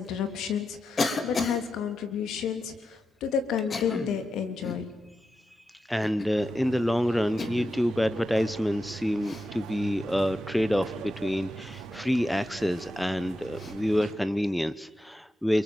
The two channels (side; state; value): both; normal; correlation 0.89